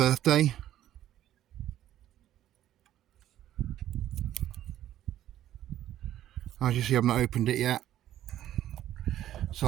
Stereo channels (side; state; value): left; quieter; 12.4 dB